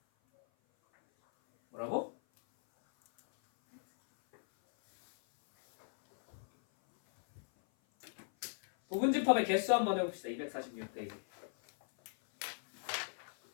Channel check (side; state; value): right; silent; 53 dB below the other